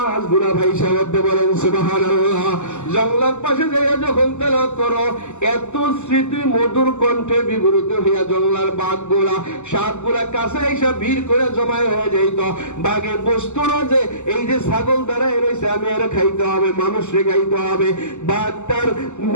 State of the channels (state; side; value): late; right; 0.84 ms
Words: ভাইসা উঠতে। বলেন সুবহানাল্লাহ। জঙ্গলের পাশে যাইয়া যখন তেলাওয়াত করো, এত স্মৃতি মধুর কণ্ঠে বিবৃত হইয়া জঙ্গলার বাঘগুলা, সাপগুলা কাছে এসে ভিড় করে জমায় হয়ে যাইত। বাঘে বসতো না যে এই যে ছাগল দাঁড়ায় রয়েছে, আমি এর খাইতে হবে, মানুষরে খাইতে হবে। বাঘ তার